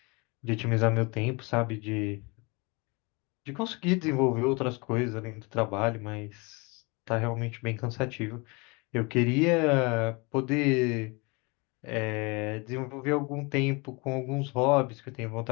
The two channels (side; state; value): right; quieter; 28.4 dB